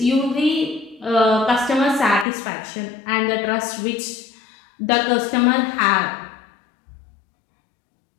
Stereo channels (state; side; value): drops out; right; at 2.2 s